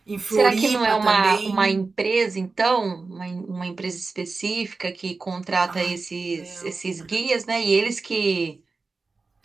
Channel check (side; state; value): left; quieter; 4.0 dB